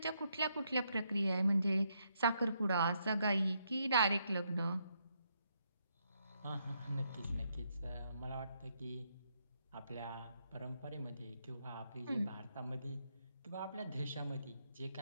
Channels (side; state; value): both; inverted; correlation -0.77